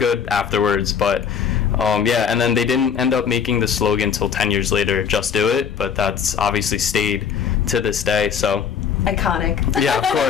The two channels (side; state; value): right; quieter; 7.2 dB